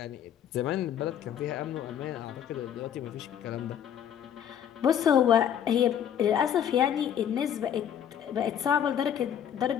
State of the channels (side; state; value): right; quieter; 9.3 dB